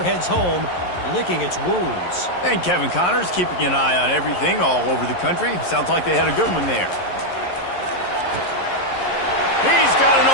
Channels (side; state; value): right; late; 11 ms